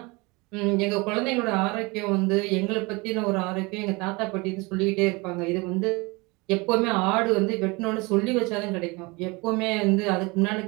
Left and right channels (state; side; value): quieter; left; 25.8 dB